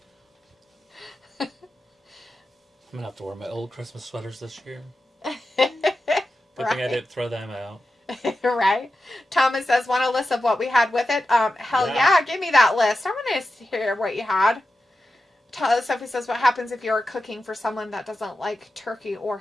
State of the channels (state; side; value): normal; both; correlation 0.91